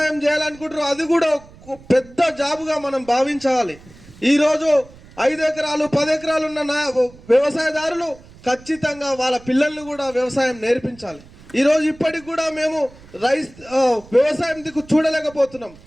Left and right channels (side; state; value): right; noise; rumble, 23 dB below the sound